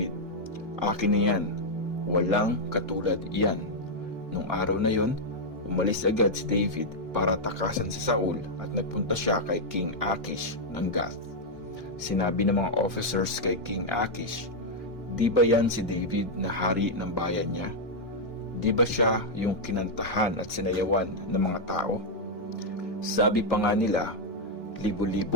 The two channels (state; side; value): normal; both; correlation -0.02